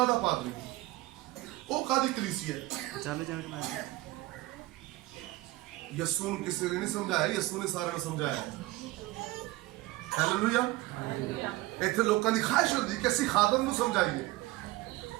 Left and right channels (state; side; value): quieter; left; 19.0 dB